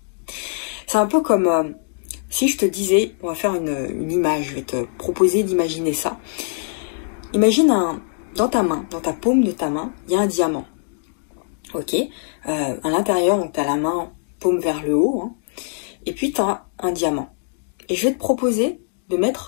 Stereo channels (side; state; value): right; silent; digital silence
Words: C'est un peu comme si je te disais, on va faire une image, je vais te proposer d'imaginer ça. Imagine dans ta main, dans ta paume de ta main, il y a un diamant. Ok, à l'intérieur, donc tu as la main paume vers le haut, hein, et puis tu as un diamant. Et je vais te proposer de